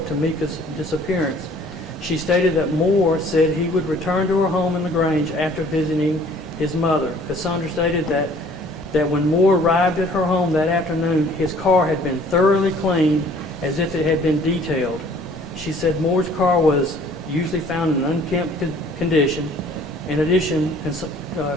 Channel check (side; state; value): both; normal; correlation 0.55